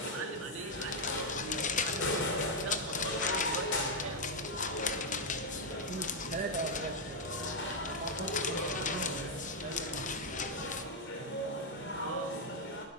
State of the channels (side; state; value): both; normal; correlation -0.01